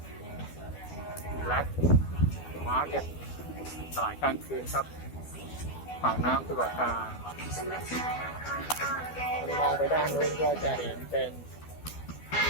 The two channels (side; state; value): right; late; 12 ms